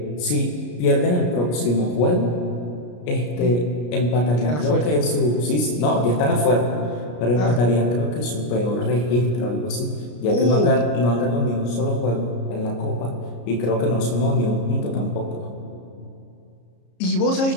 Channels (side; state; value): right; late; 33 ms